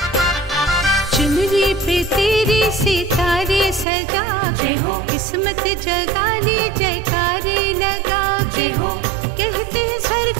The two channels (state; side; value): drops out; left; at 3.9 s